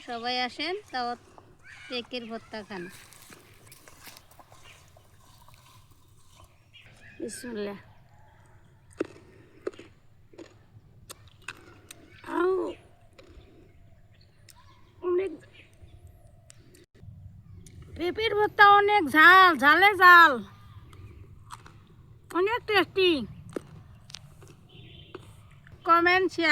সবাই আসেন, তাও পেঁপের ভর্তা খান। বিসমিল্লাহ। অনেক পেঁপের ভর্তা, অনেক ঝাল, ঝালে ঝাল, অনেক টেস্টি। Comment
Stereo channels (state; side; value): identical; both; correlation 1.00